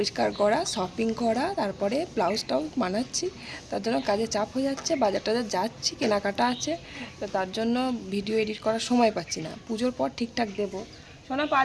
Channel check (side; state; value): both; identical; correlation 1.00